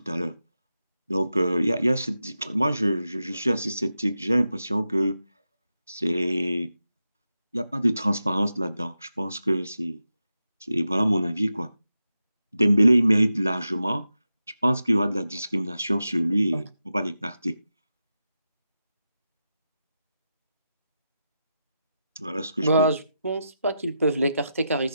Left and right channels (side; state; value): both; inverted; correlation -0.90